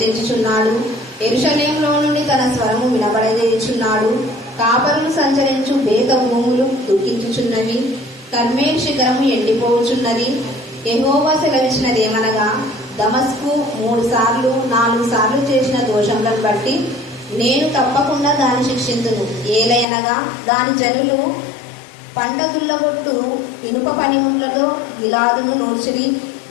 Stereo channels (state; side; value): drops out; right; at 19.9 s